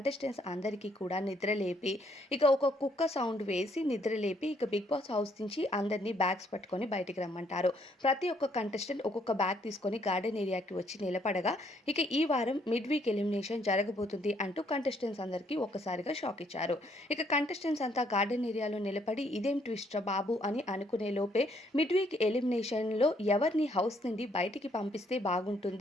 అందరికీ కూడా నిద్రలేపి ఇక ఒక కుక్క సౌండ్ వేసి నిద్రలేపి ఇక బిగ్ బాస్ హౌస్ నుంచి అందరినీ బ్యాగ్స్ పట్టుకొని బయటికి రమ్మంటారు. ప్రతి ఒక్క కంటెస్టెంట్ ఒక్కొక్క బ్యాగ్ తీసుకొని గార్డెన్ ఏరియాకి వచ్చి నిలబడగా ఇక ఈ వారం మిడ్ వీక్ ఎలిమినేషన్ జరగబోతుంది అంటూ కంటెస్టెంట్స్ అందరికీ ఒక్కసారిగా షాక్ ఇచ్చారు. ఇక కంటెస్టెంట్స్ అంతా గార్డెన్ ఏరియాలో నిలబడి ఇదేం ట్విస్ట్ రా బాబు అని అనుకునే లోపే మిడ్ వీక్ ఎలిమినేషన్లో ఎవరిని హౌస్ నుండి బయటికి పంపిస్తే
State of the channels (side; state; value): both; normal; correlation 0.69